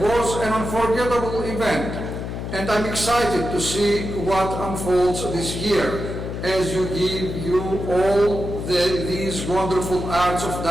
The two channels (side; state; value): left; noise; hum, 6 dB below the sound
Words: was an unforgettable event, and I'm excited to see what unfolds this year as you give all these wonderful arts of